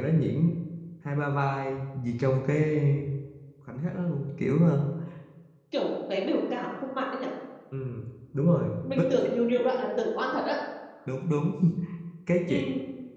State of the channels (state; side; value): identical; both; correlation 1.00